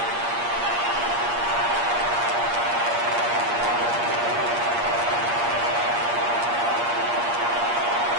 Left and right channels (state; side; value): late; left; 8.5 ms